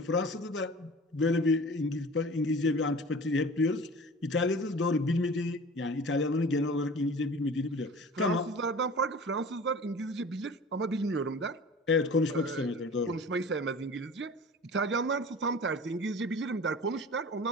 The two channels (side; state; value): both; normal; correlation 0.40